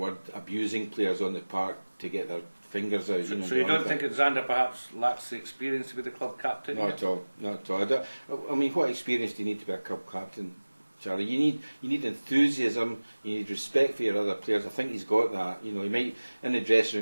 abusing players on the park to get their fingers out. So you don't think that Xander perhaps lacks the experience to be the club captain? Not at all. Not at all. I mean, what experience do you need to be a club captain, Charlie? You need enthusiasm. You need respect for your other players. I think he's got that. He might in the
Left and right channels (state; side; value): inverted; both; correlation -1.00